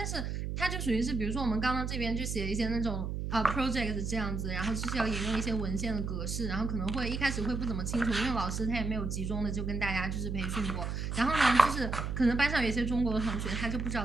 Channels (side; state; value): right; noise; hum, 3 dB below the sound